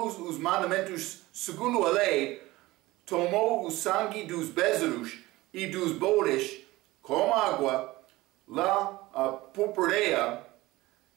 os mandamentos segundo a lei, tomou o sangue dos bezerros e dos bodes com água, lá a purpureia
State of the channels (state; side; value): quieter; left; 19.2 dB